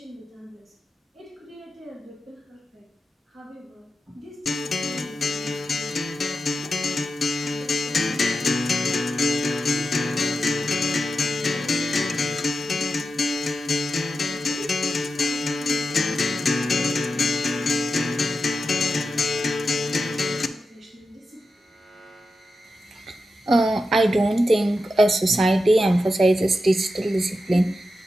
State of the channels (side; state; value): both; normal; correlation 0.90